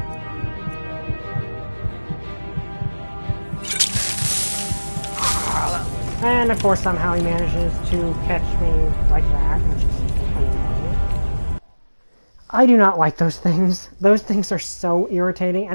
And of course, somehow he manages to catch me like that, which is annoying. I do not like those things. Those things are so irritating,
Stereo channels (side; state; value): both; inverted; correlation -1.00